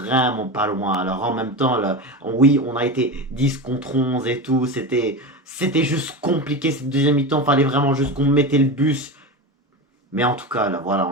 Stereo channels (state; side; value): normal; both; correlation 0.23